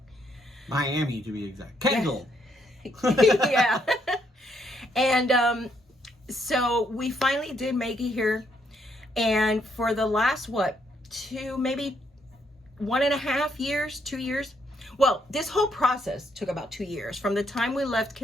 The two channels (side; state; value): both; normal; correlation 0.74